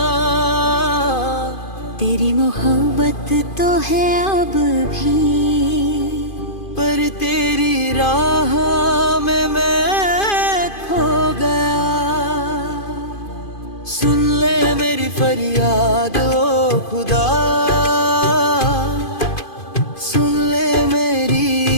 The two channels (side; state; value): right; late; 2.5 ms